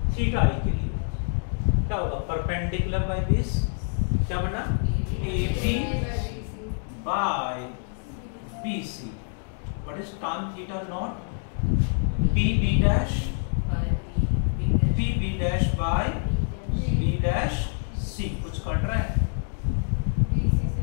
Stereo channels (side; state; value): right; silent; 61 dB below the other